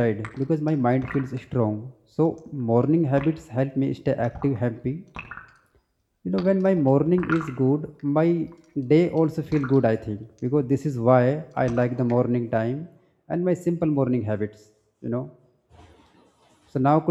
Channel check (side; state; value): both; identical; correlation 1.00